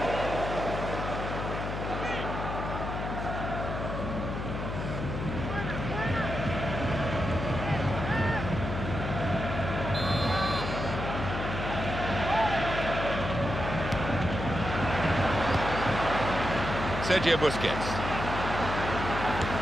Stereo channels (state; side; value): noise; left; hum, 5 dB below the sound